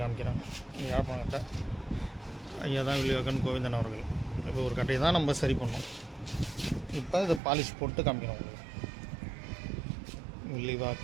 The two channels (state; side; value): drops out; left; at 7.4 s